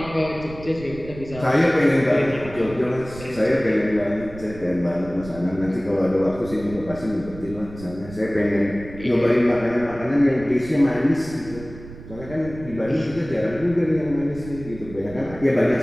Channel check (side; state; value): right; noise; rumble, 15 dB below the sound